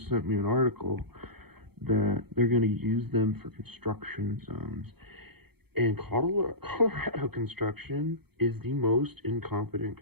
sent me an article that they're going to use them for construction zones. And Colorado construction is the most incompetent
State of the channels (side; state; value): left; late; 0.97 ms